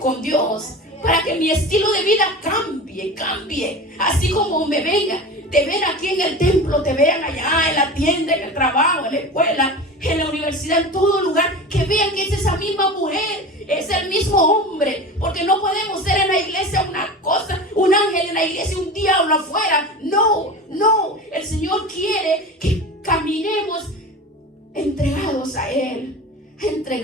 Dios, para que mi estilo de vida cambie. Así como me te ven aquí en el templo, te vean allá en la tienda, en el trabajo, en la escuela, en la universidad, en todo lugar, que vean que es esa misma mujer, es el mismo hombre, porque no podemos ser en la iglesia una cosa, un ángel en la iglesia, un diablo afuera. No, no. El Señor quiere que caminemos entregados a Él,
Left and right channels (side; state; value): both; normal; correlation 0.32